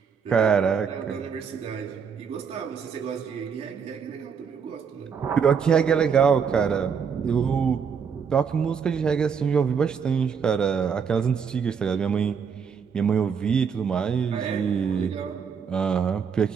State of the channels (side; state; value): left; quieter; 6.6 dB